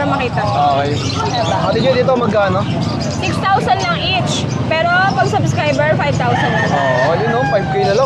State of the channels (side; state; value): both; identical; correlation 1.00